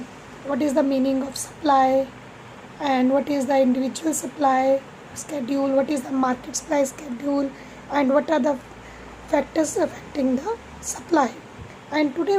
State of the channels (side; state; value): both; identical; correlation 1.00